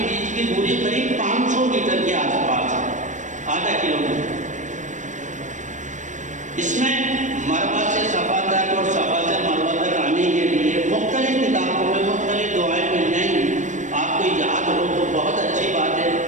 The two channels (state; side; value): late; left; 0.36 ms